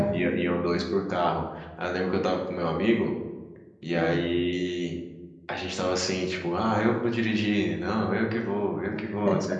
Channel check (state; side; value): identical; both; correlation 1.00